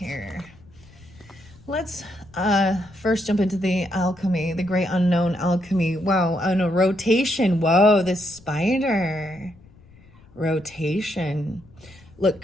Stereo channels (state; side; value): noise; left; rumble, 25 dB below the sound